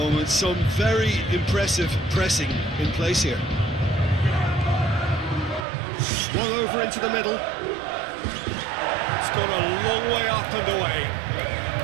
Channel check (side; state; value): left; drops out; at 5.7 s